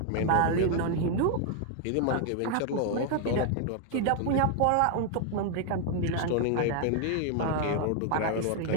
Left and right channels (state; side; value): different; both; correlation 0.00